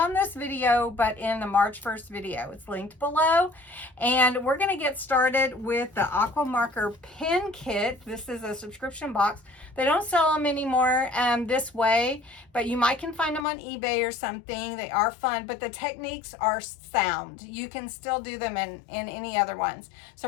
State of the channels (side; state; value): right; drops out; at 13.5 s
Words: this video, but in the March 1st video. It's linked below. And we're going to get started with the Aqua Marker Pen Kit. This is a subscription box. They don't sell them anymore this way, but you might can find them on eBay or something. They are fun, but the techniques are sound. You can still do them in any other ones.